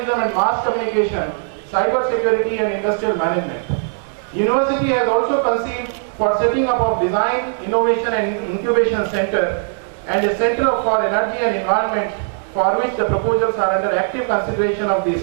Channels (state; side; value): silent; left; digital silence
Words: and mass communication, cyber security and industrial management. University has also conceived for setting up of design, innovation and incubation center and a center for energy and environment for which the proposals are under active consideration of the